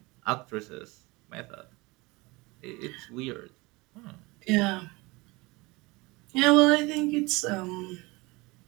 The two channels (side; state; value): left; quieter; 23.8 dB